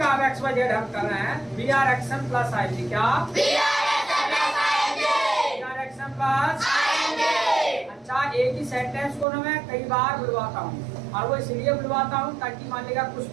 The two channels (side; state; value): left; drops out; at 9.2 s